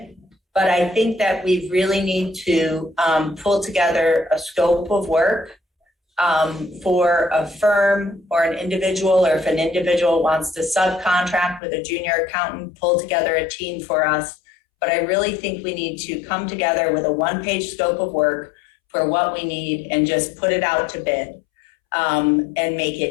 But I think that we really need to pull together a scope of work for a firm or an individual, or if an individual wants to subcontract with a junior accountant, pull together a team for us. But I really think we need to come together with a one-page scope of work for what we need and just put it out to bid and make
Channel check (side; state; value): right; drops out; at 11.6 s